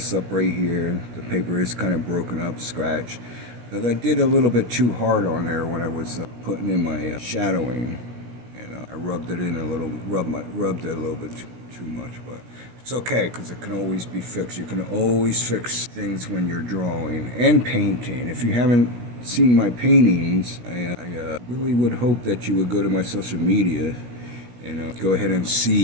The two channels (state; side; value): late; left; 17 ms